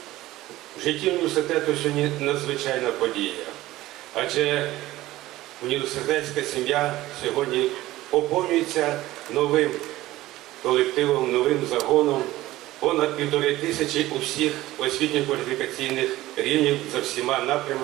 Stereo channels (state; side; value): quieter; left; 16.6 dB